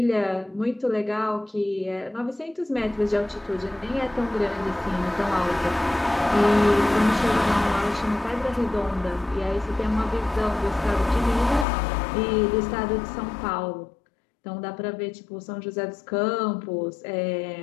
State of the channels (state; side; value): drops out; right; at 11.7 s